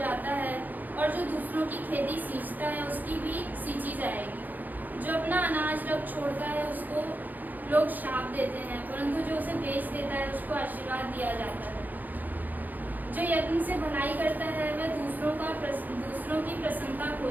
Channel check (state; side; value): late; left; 0.087 ms